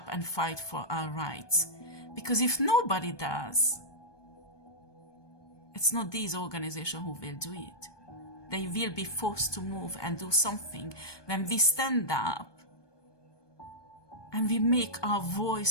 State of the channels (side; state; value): right; late; 1.2 ms